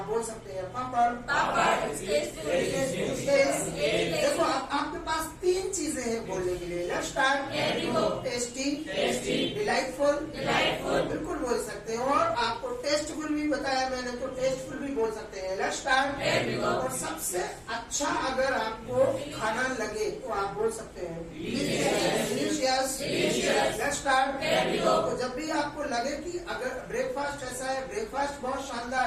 बोल सकते हैं पापड़। देखो आपके पास तीन चीजें हैं बोलने के लिए। Let's start. टेस्टी, डिलाइटफुल, बिल्कुल बोल सकते हैं। और आपको टेस्टफुल भी बताया मैंने, तो टेस्टफुल भी बोल सकते हैं। Let's start. और सबसे अच्छा अगर आपको खाना लगे तो आप बोल सकते हैं डिलीशियस। Let's start. तो जब भी आपको लगे कि अगर ब्रेकफास्ट ऐसा है, ब्रेकफास्ट बहुत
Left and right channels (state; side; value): identical; both; correlation 1.00